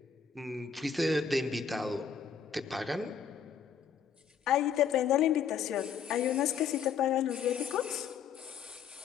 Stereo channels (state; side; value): quieter; right; 7.1 dB